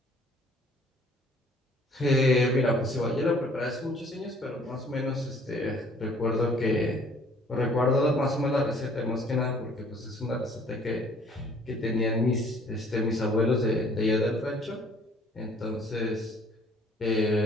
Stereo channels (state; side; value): normal; both; correlation 0.57